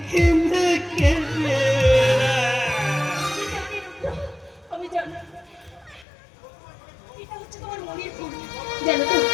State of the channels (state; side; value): drops out; right; at 6.1 s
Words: কেঁদে কেঁদে। আমি জানি এটা হচ্ছে তোমার মনের ভুল। জানো তো,